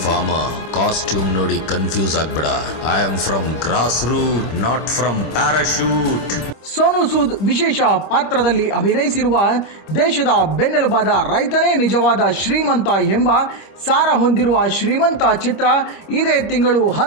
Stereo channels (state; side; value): late; right; 25 ms